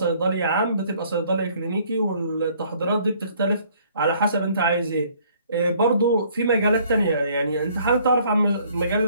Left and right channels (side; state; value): both; inverted; correlation -0.61